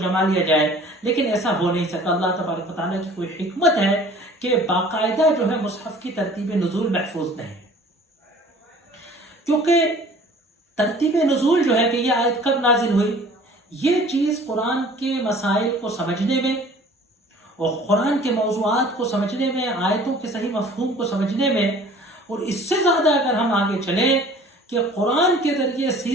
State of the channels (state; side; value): normal; both; correlation 0.49